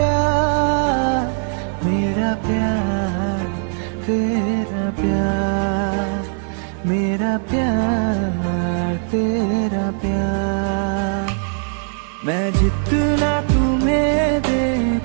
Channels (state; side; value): silent; left; 55 dB below the other